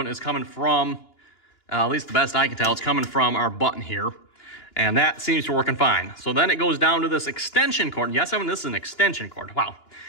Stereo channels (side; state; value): right; late; 2.9 ms